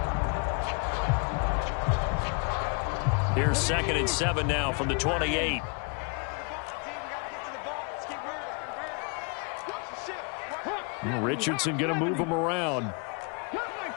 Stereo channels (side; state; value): right; quieter; 34.8 dB